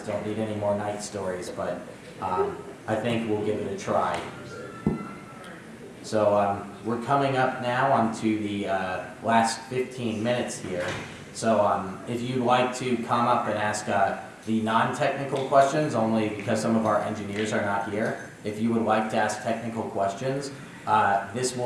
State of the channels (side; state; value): both; identical; correlation 1.00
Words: don't need any more night stories, but I think we'll give it a try. So we're coming up now onto the last 15 minutes here. So if you'd like to come up and ask the non-technical questions, only because some of our engineers are not here, if you would like to ask technical questions, this